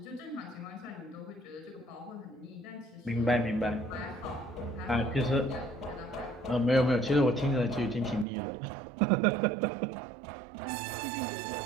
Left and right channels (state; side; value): drops out; left; at 8.2 s